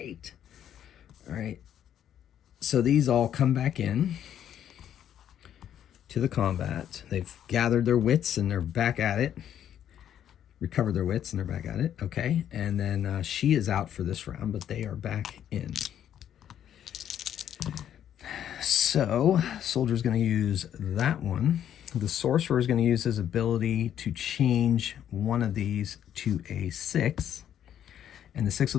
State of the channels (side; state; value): right; quieter; 10.1 dB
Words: All right. So these all come back in to the combat. They've gathered their wits, and they're back at it. Recovered their wits, and they're back at it. Okay. And then she is out for this round, but they are back in. So, soldier's going to use that one. The sorcerer is going to use his ability to change one of these to a 6. And the 6